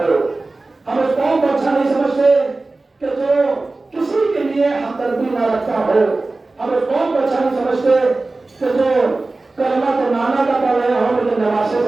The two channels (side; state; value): left; quieter; 3.3 dB